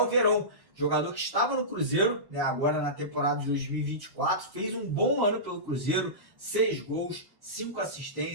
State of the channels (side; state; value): left; late; 1.1 ms